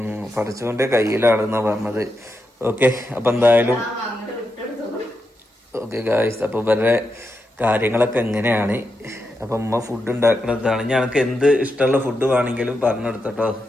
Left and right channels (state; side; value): normal; both; correlation 0.86